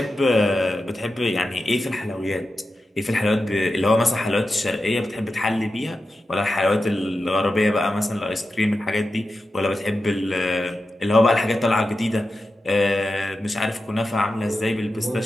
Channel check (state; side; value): normal; both; correlation 0.91